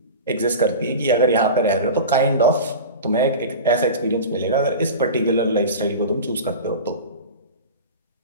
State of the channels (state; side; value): inverted; both; correlation -0.30